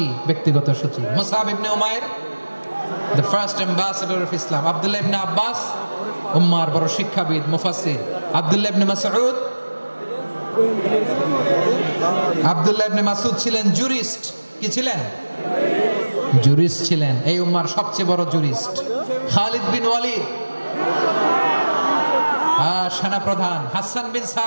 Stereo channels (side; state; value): both; inverted; correlation -1.00